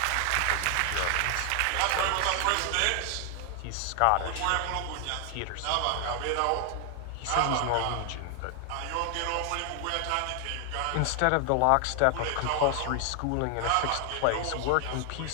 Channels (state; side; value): different; both; correlation 0.00